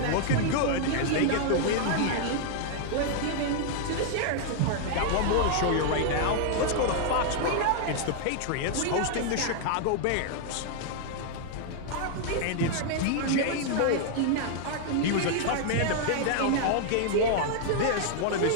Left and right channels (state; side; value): different; both; correlation 0.00